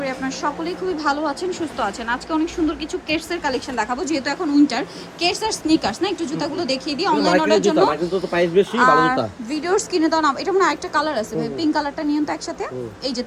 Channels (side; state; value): both; identical; correlation 1.00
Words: আপনারা সকলেই খুবই ভালো আছেন, সুস্থ আছেন। আজকে অনেক সুন্দর কিছু কেটসের কালেকশন দেখাবো, যেহেতু এখন উইন্টার। কেটস আর স্নিকার্স না, একটু জুতাগুলো দেখিয়ে দিই অনলাইন অর্ডার জন্য। ভিডিওর স্ক্রিনে দাও না, এটা মানে একটা কালার আছে ভাই, পিঙ্ক কালারটা নিয়ন তো একসাথে। এই যে